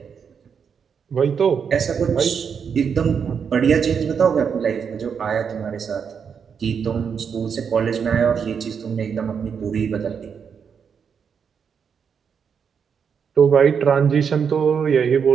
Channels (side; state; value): left; quieter; 6.8 dB